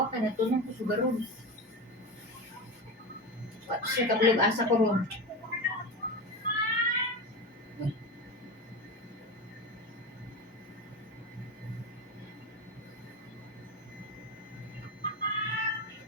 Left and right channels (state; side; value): normal; both; correlation 0.23